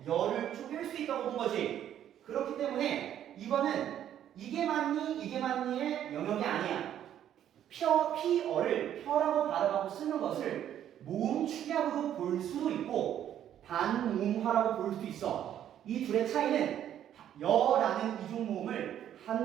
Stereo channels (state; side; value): quieter; left; 10.6 dB